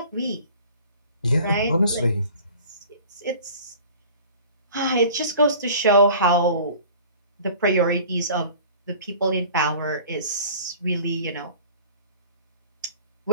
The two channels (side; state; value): both; inverted; correlation -0.45